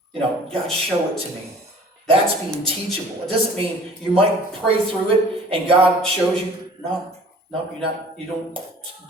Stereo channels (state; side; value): normal; both; correlation 0.49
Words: God, show it to me. That's being teachable. It doesn't mean you might pray through it and God shows you. No, you're not. You don't